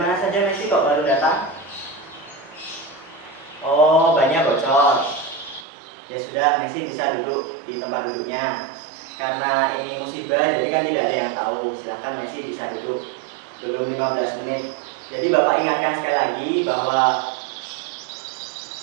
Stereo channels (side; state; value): left; drops out; at 5.7 s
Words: saja Messi kok baru datang? Oh, banyak bocor. Ya sudah, Messi bisa duduk di tempat duduknya. Karena ini musibah, jadi kan tidak ada yang tahu. Silahkan Messi bisa duduk. Belum 15 menit. Jadi Bapak ingatkan sekali lagi bahwa